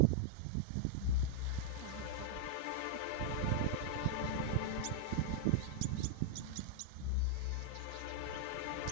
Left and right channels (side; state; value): both; different; correlation -0.01